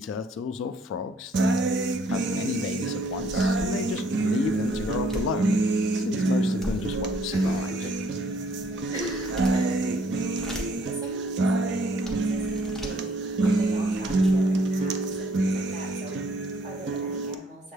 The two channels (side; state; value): both; normal; correlation 0.63